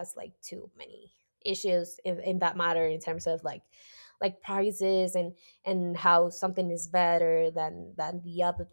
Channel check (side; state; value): both; inverted; correlation -1.00